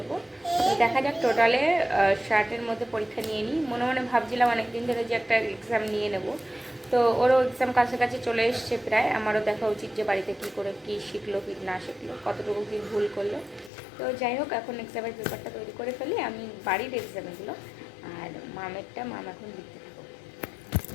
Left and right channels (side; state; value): right; drops out; at 13.7 s